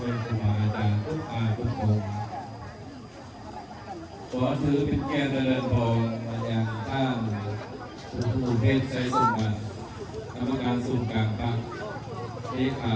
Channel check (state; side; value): identical; both; correlation 1.00